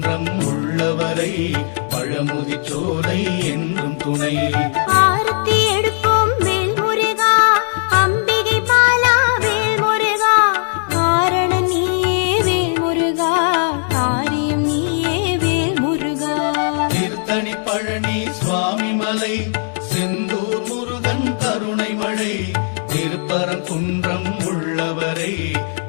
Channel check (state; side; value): silent; right; 56 dB below the other